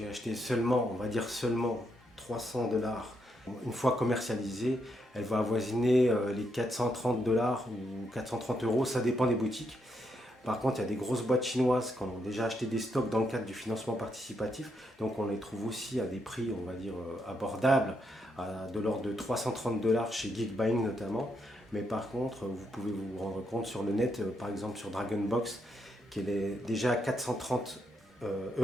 acheté seulement, on va dire seulement 300 $. Une fois commercialisée, elle va avoisiner les 430 $ ou 430 €, ça dépend des boutiques. Par contre, il y a des grosses boîtes chinoises qui ont déjà acheté des stocks dans le cadre du financement participatif. Donc on les trouve aussi à des prix, on va dire, abordables, de l'ordre de 330 $ chez Geekbuying notamment. Mais par contre, vous pouvez vous rendre compte sur le net, par exemple sur Dragonbox, qu'elle est déjà à 430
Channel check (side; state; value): both; normal; correlation 0.79